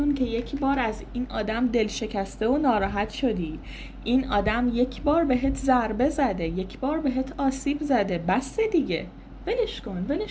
که یک بار از این آدم دل شکسته و ناراحت شدی. این آدم یک بار بهت ضربه زده، یک بار بهت آسیب زده، بس دیگه. ولش کن،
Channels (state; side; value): identical; both; correlation 1.00